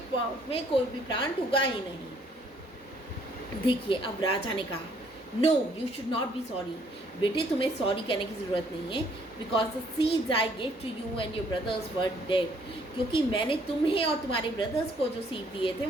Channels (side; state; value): both; normal; correlation 0.64